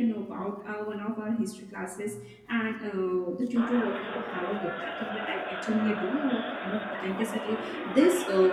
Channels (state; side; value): identical; both; correlation 1.00